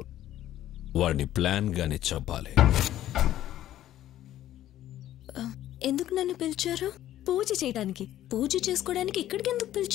వాడిని ప్లాన్ గానే చంపాలి. ఎందుకు నన్ను పిలిచారు? పూజ చేయడానికి. పూజ చేసుకోవడానికి ఇక్కడికి ఎందుకు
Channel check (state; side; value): quieter; right; 12.9 dB